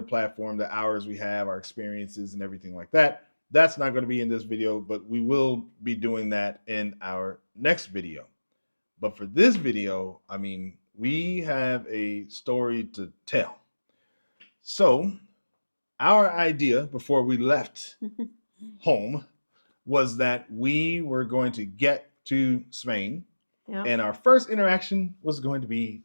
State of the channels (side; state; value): both; inverted; correlation -1.00